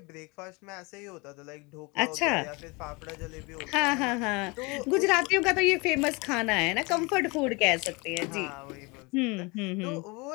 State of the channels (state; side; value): quieter; right; 27.3 dB